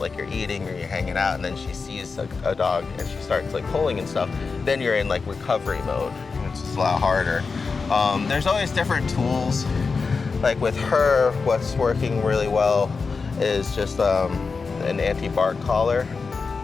you're eating or you're hanging out and then she sees a dog and she starts like pulling and stuff, then you're in like recovery mode, which is a lot harder. There's always different tools. Like with her, what's working really well is just an anti-bark collar.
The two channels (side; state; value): right; quieter; 4.7 dB